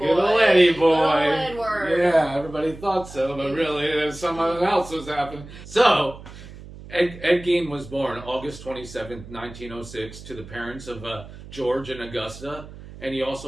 Good old Eddie boy. Good old Edward. Yeah, everybody thought so, but really there's something else was happening. So, Ed Gein was born August 27th, 1906, to the parents of George and Augusta, and he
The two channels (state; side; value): noise; right; hum, 16 dB below the sound